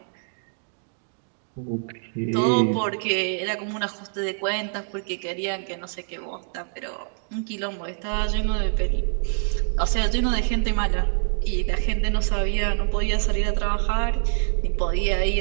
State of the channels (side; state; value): left; silent; 62 dB below the other